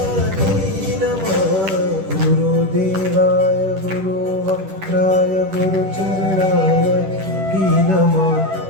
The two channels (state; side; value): late; left; 10 ms